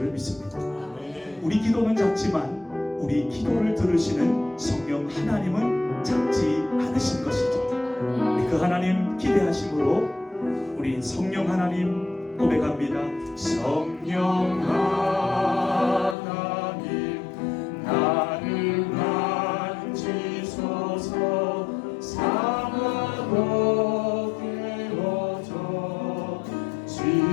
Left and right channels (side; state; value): right; drops out; at 16.2 s